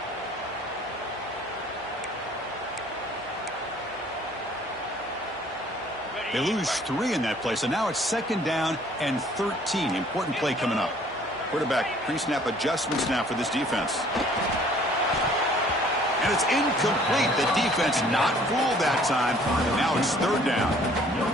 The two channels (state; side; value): normal; both; correlation 0.56